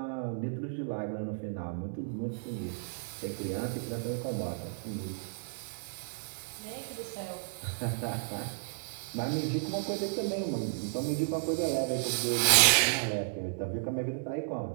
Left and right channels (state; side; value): silent; left; digital silence